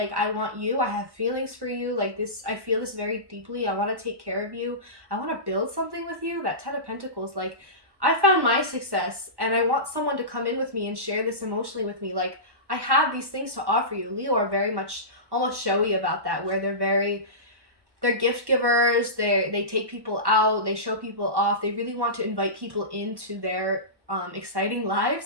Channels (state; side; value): late; left; 1.1 ms